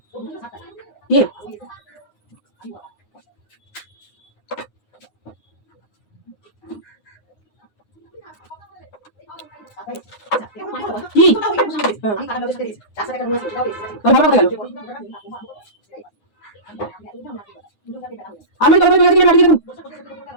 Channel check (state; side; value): late; right; 9.6 ms